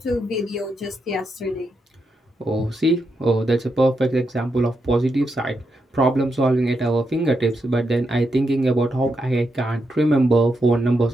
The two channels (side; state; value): both; normal; correlation 0.83